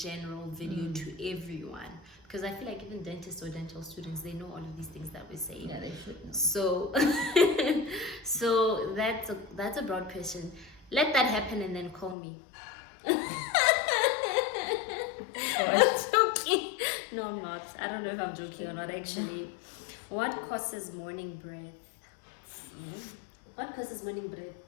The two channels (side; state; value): right; drops out; at 12.2 s